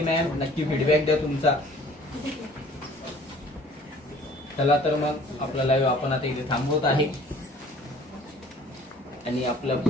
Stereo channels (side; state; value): both; normal; correlation 0.52